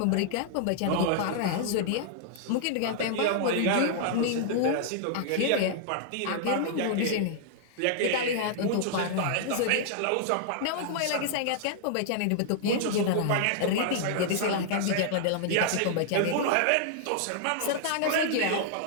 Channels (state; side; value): different; both; correlation -0.01